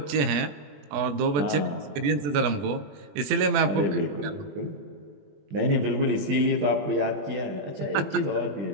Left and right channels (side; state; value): left; late; 20 ms